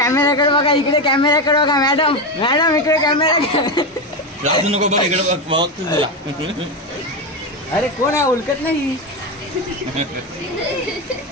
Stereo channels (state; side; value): normal; both; correlation 0.14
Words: बघा इकडे कॅमेराकडे बघा मॅडम मॅडम इकडे कॅमेरा राजू नको बघ इकडे बघ तुला. अरे कोण आहे उलकत नाही